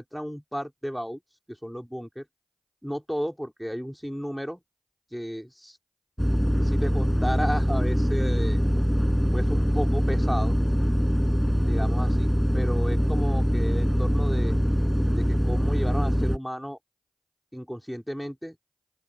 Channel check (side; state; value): both; identical; correlation 1.00